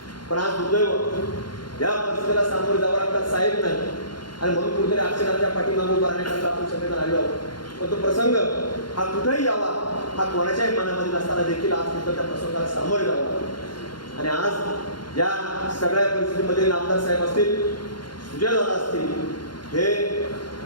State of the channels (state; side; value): late; right; 0.71 ms